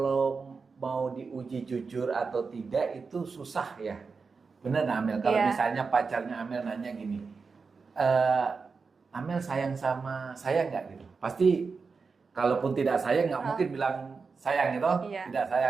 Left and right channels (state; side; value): quieter; left; 4.8 dB